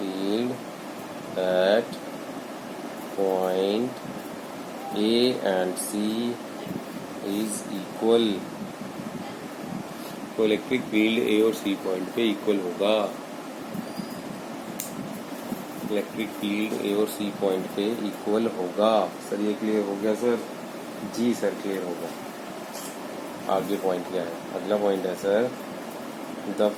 at point A and C is equal, तो इलेक्ट्रिक फील्ड ए और सी पॉइंट पे इक्वल होगा। इलेक्ट्रिक फील्ड ए और सी पॉइंट पे इक्वल होगा। सर ये क्लियर हो गया सर? जी सर क्लियर होगा। आगे पॉइंट क्या है? अगला पॉइंट है sir, the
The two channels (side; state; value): both; identical; correlation 1.00